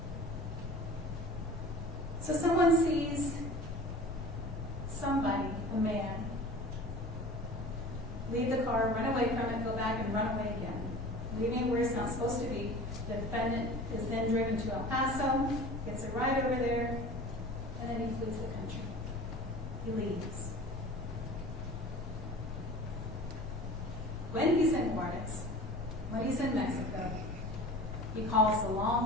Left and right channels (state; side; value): normal; both; correlation 0.40